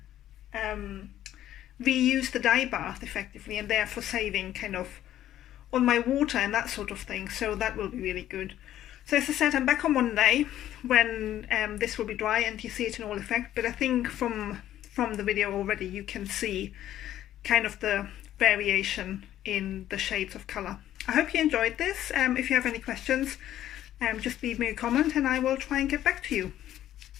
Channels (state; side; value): quieter; right; 12.4 dB